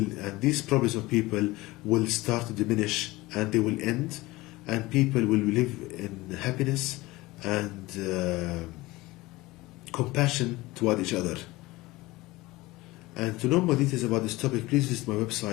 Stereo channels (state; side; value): quieter; right; 20.2 dB